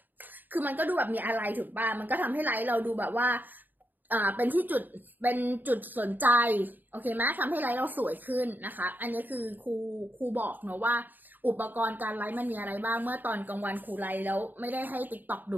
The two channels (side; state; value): left; late; 0.087 ms